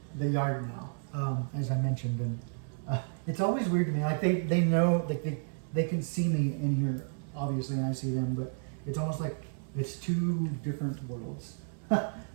the yard now, as I mentioned, and it's always weird to me. Like they know, like they can see me in here, obviously, and I see them, but it's almost like it's two different worlds.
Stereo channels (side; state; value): left; silent; digital silence